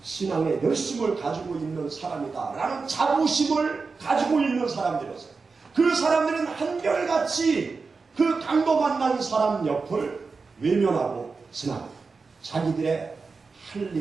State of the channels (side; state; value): left; quieter; 4.5 dB